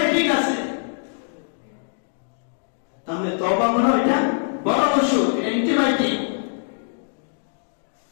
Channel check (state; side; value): silent; right; digital silence